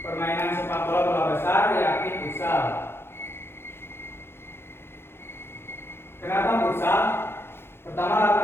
permainan sepak bola bola besar yakni futsal. Kenapa futsal? Pertama,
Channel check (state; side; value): late; right; 0.11 ms